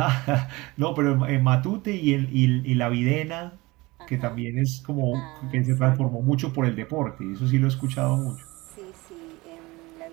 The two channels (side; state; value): left; quieter; 22.1 dB